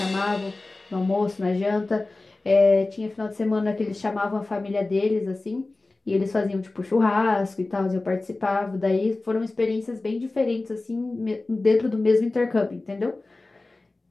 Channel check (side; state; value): right; quieter; 3.2 dB